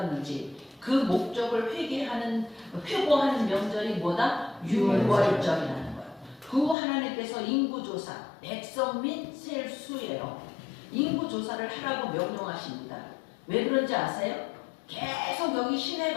그 목적을 회고하는 명절이 뭐다? 6월절이라는 거예요. 그 후 하나님께서 인구조사, 백성 및 셀 수예요. 인구조사를 하라고 명령하십니다. 왜 그런지 아세요? 계속 여기 신의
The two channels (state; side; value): drops out; right; at 6.8 s